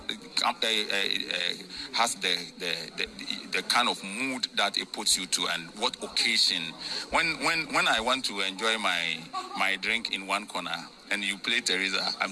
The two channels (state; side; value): identical; both; correlation 1.00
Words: kind of mood that it puts you to and what occasion. When I want to enjoy my drink in one corner and you play Teresa,